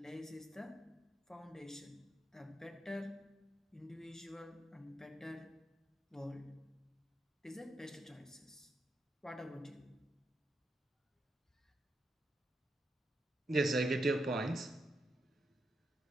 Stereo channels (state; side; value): normal; both; correlation 0.84